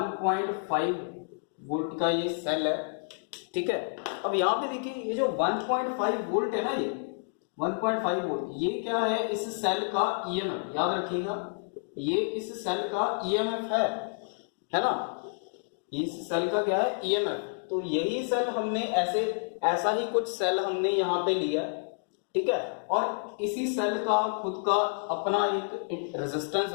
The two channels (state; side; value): silent; right; digital silence